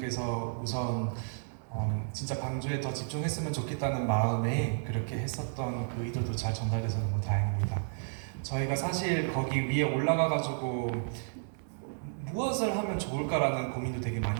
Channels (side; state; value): left; silent; 56 dB below the other